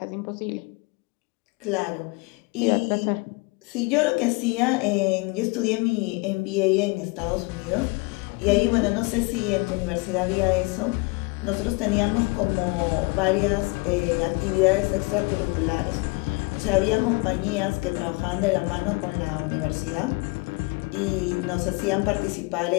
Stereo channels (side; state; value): right; quieter; 27.6 dB